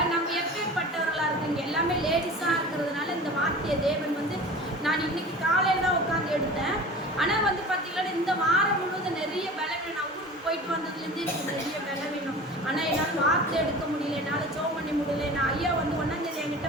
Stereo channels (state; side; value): normal; both; correlation 0.38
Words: நம்ம எப்பேற்பட்டவர்களா இருக்கீங்க? எல்லாமே லேடிஸா இருக்கிறதுனால இந்த வார்த்தையை தேவன் வந்து நான் இன்னைக்கு காலையில தான் உட்காந்து எடுத்தேன். ஆனா வந்து பாத்தீங்கன்னா இந்த வாரம் முழுவதும் நிறைய பலவீனம். நான் ஊருக்கு போயிட்டு வந்ததுலேருந்து எனக்கு நிறைய பலவீனம். ஆனா என்னால் வார்த்தை எடுக்க முடியல, என்னால் ஜெபம் பண்ண முடியல. நான் ஐயா வந்து 1ஆம் தேதி என்கிட்ட